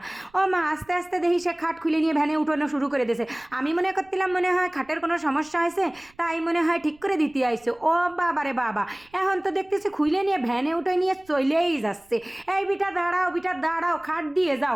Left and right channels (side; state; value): right; noise; rumble, 30 dB below the sound